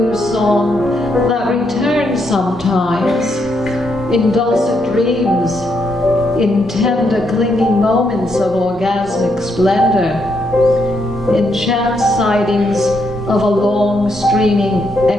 song that returns sometimes, in dulcet dreams, in tender clinging moments of orgasmic splendor, in chance sightings of a long streaming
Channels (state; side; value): normal; both; correlation 0.78